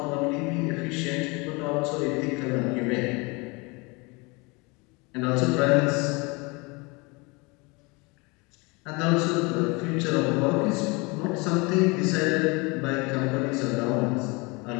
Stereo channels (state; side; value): quieter; right; 27.3 dB